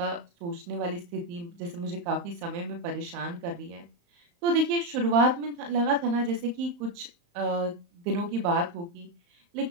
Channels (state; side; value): late; left; 35 ms